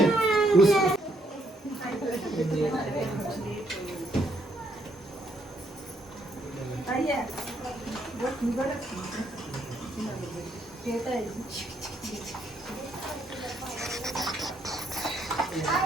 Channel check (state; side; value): normal; both; correlation 0.73